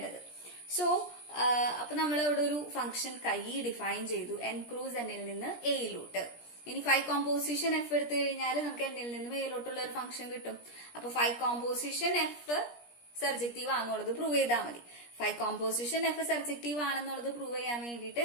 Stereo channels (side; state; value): right; late; 17 ms